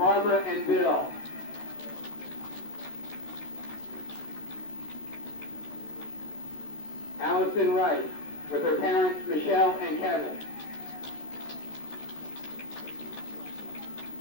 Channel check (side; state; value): right; late; 14 ms